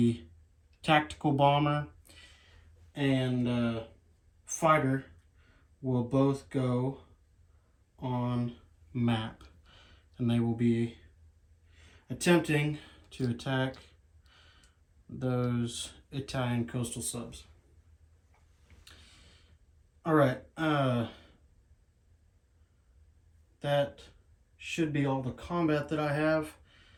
tactical bomber and fighter will both go on map, and they will be attempting to attack those Italian coastal subs. All right, that should be all the combat that I have,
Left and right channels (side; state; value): both; identical; correlation 1.00